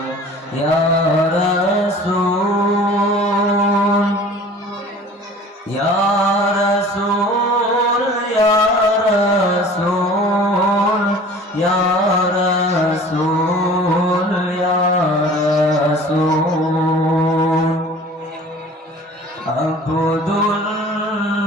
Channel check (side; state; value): both; normal; correlation 0.45